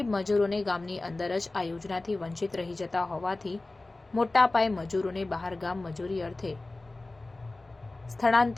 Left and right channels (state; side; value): quieter; right; 3.0 dB